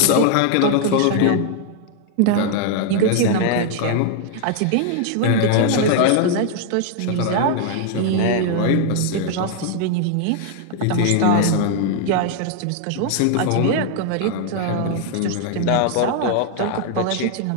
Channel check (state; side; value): different; both; correlation 0.00